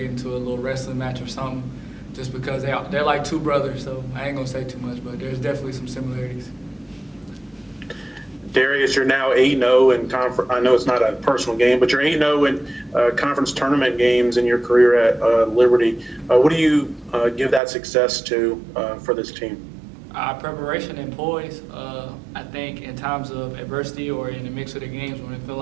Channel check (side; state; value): left; drops out; at 17.6 s